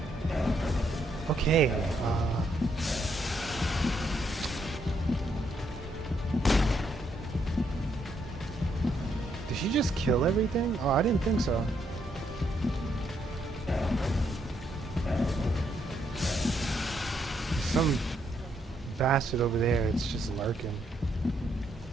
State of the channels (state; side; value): normal; both; correlation 0.75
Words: Okay, did she just kill everything? Oh, I didn't think so. Some bastard over there, it's just lurking.